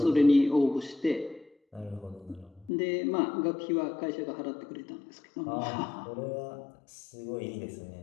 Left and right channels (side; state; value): right; drops out; at 2.7 s